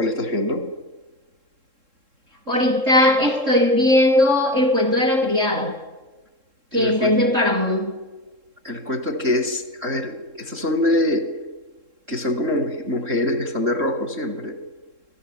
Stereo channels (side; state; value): left; late; 3.7 ms